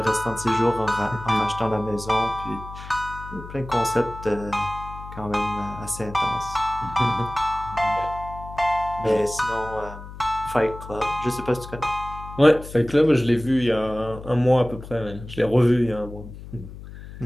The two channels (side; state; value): left; noise; hum, 14 dB below the sound